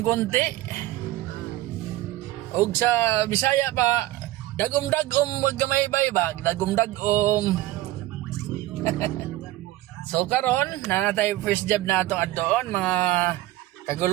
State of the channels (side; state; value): left; quieter; 16.6 dB